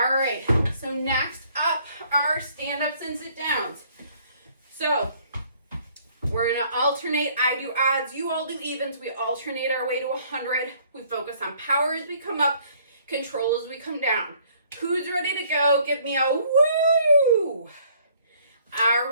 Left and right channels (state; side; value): inverted; both; correlation -0.61